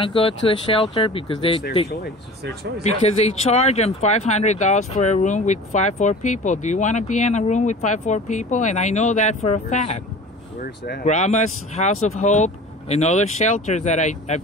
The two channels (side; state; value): both; normal; correlation 0.39